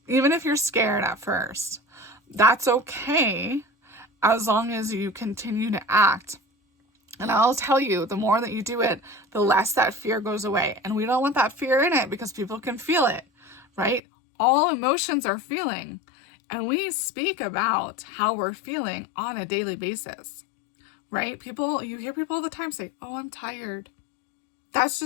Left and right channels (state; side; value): drops out; right; at 14.0 s